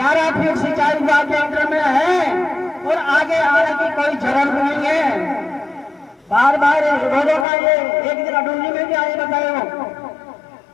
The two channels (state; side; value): drops out; right; at 7.5 s